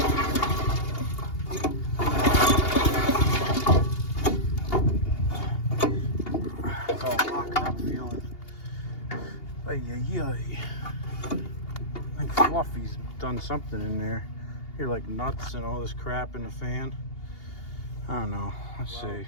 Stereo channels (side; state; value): right; late; 2.8 ms